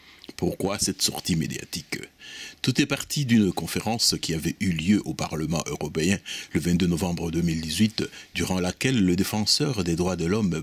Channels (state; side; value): identical; both; correlation 1.00